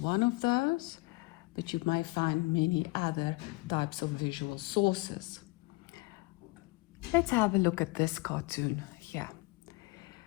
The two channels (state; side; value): quieter; right; 24.5 dB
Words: of those, but you may find many other types of visual sources. Let's have a look at this cartoon here.